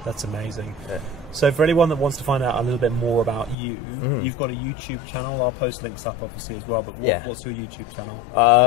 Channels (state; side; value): drops out; right; at 3.6 s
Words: That's amazing. So for anyone that wants to find out a little bit more about you, you've got a YouTube channel. I'll post links up obviously as well, but what's your YouTube channel?